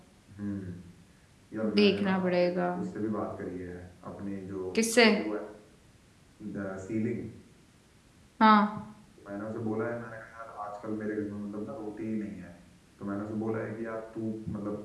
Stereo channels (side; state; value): both; identical; correlation 1.00